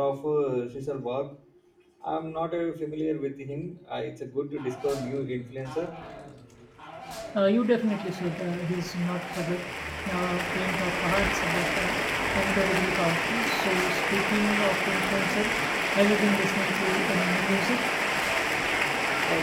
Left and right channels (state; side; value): identical; both; correlation 1.00